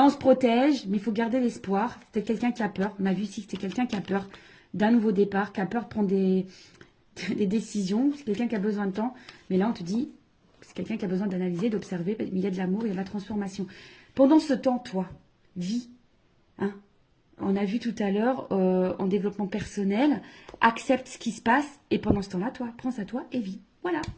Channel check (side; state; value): both; identical; correlation 1.00